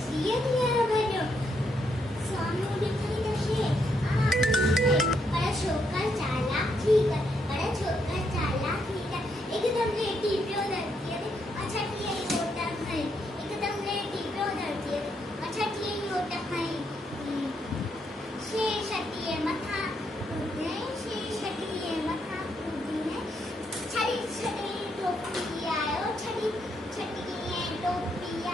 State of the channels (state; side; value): normal; both; correlation 0.77